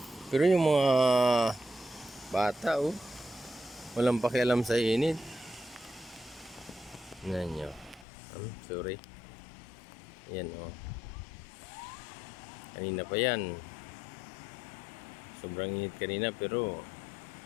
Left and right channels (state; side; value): drops out; right; at 8.1 s